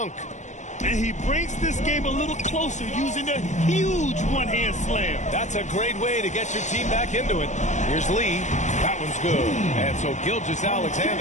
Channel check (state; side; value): late; right; 0.34 ms